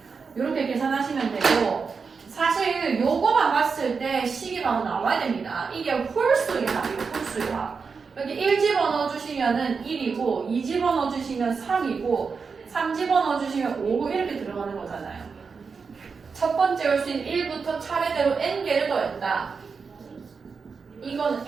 이렇게 계산하시면 되고 사실 요거만 봤을 때 식이 바로 나와야 됩니다. 이게 홀수의 합이에요. 홀수의 합. 여기 1 집어넣어 주시면은 1이고 2 집어넣어 주시면 3이고 3 집어넣어 주시면 5 이렇게 들어가는 거잖아요. 첫 번째 홀수인 1부터 차례대로 n개를 더했다. 이건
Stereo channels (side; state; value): left; quieter; 5.2 dB